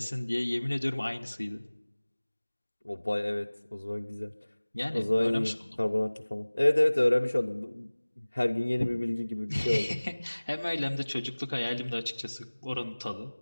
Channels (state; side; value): inverted; both; correlation -1.00